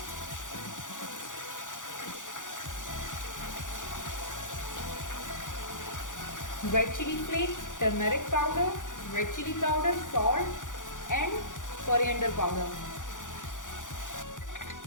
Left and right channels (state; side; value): late; right; 0.87 ms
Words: Red chili flakes, turmeric powder, red chili powder, salt and coriander powder.